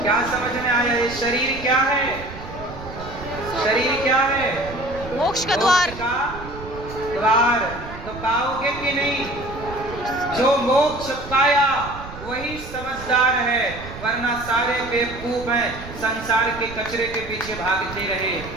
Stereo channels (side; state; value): right; noise; rumble, 13 dB below the sound